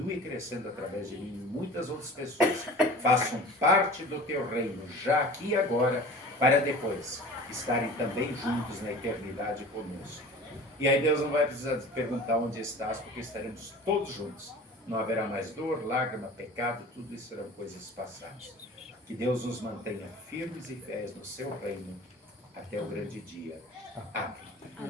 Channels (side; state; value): both; normal; correlation 0.41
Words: crescendo através de mim e muitas outras pessoas façam parte do teu reino, já aqui e agora, para depois estarem também juntos na eternidade conosco. E aí Deus não vai precisar perguntar onde estás, porque estaremos todos juntos. Não haverá mais dor, lágrima, pecado, tudo isso serão coisas passadas. Que Deus nos mantenha firmes e fiéis no seu reino até o grande dia. Amém.